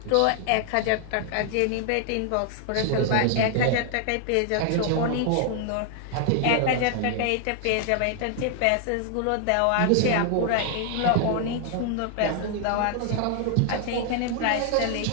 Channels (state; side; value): different; both; correlation 0.00